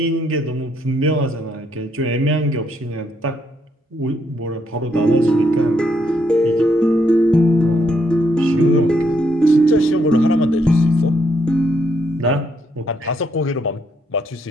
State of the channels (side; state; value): both; normal; correlation 0.74